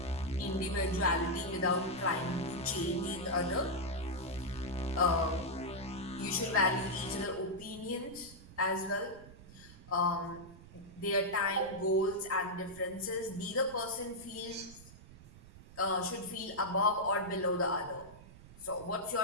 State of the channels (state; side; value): noise; right; rumble, 18 dB below the sound